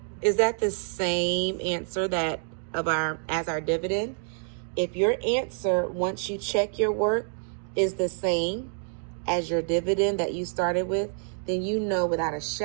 Is that the same answer that as our dividend? If your answer, once you check your work, is the same as your dividend that you started with, then you know without a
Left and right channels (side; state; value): left; silent; 60 dB below the other